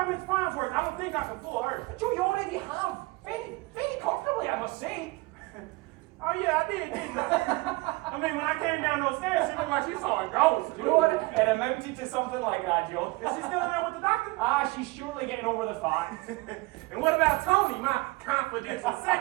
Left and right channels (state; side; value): quieter; left; 23.9 dB